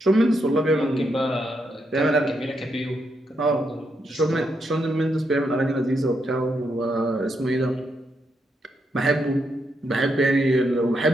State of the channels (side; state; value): both; normal; correlation 0.80